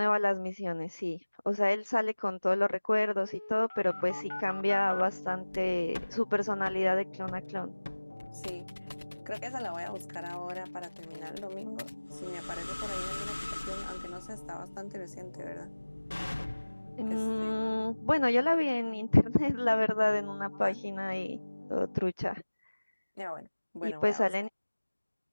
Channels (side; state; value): both; inverted; correlation -1.00